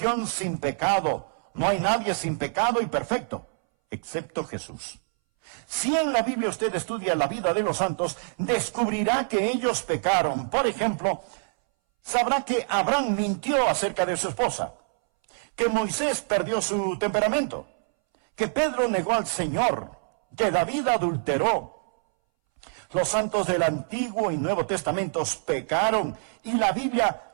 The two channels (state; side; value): silent; left; 61 dB below the other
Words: sin pecado. No hay nadie sin pecado y perfecto, excepto Jesús. Si en la Biblia usted estudia la vida de los santos, descubrirá que ellos pecaron. Por ejemplo, sabrá que Abraham mintió acerca de su esposa, que Moisés perdió su temperamento, que Pedro negó al Señor, que David adulteró. Los santos del Antiguo y Nuevo Testamentos pecaron y la Biblia